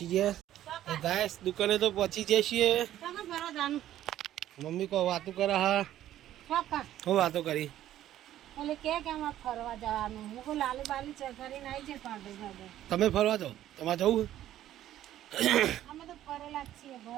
ગયા. તો ગાઈસ દુકાને તો પહોંચી જઈએ છીએ. મમ્મી કો વાતો કરે. હા હું વાતો કરી. ઓલે કે આમાં ફરવા જવાનું. હું કો લાલી બાલી ચકરીને આવી છે પાડે જાડે. તમે ફરવા જાઓ? તમારે જવું? અમે તો ફરેલા જ છીએ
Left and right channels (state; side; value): quieter; left; 12.7 dB